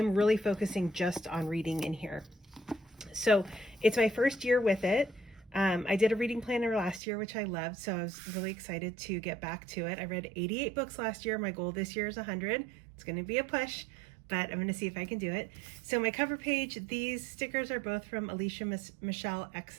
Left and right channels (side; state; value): left; drops out; at 7.0 s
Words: really focusing just on reading in here. So it's my first year with it. I did a reading planner last year, which I loved, so I was really excited to get back to it. I read 88 books last year. My goal this year is 100. It's going to be a push, but I'm going to see if I can do it. So my cover page, these stickers are both from Alicia Michelle